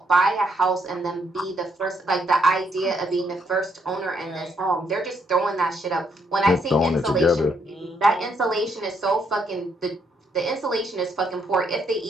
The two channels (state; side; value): normal; both; correlation 0.73